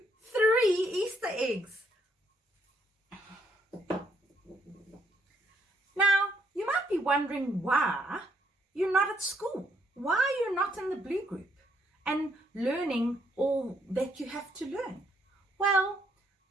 3 Easter eggs. Now, you might be wondering why you're not at school. Why you're not in the Blue Group and learning all that you have to learn. Well,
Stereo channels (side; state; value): both; normal; correlation 0.71